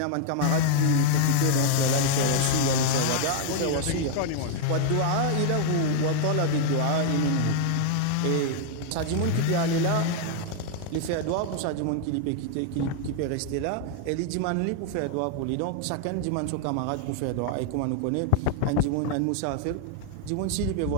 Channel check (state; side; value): different; both; correlation 0.00